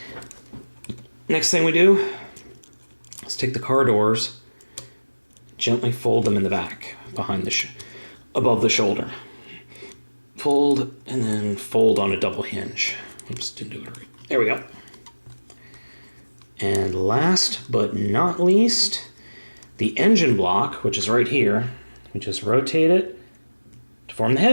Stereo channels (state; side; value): inverted; both; correlation -1.00